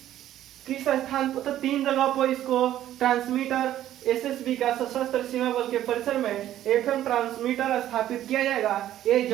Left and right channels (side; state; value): left; quieter; 12.4 dB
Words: स्थान पर? तो 3 जगह पर इसको ट्रांसमीटर एसएसबी का सशस्त्र सीमा बल के परिसर में एफएम ट्रांसमीटर स्थापित किया जाएगा। ये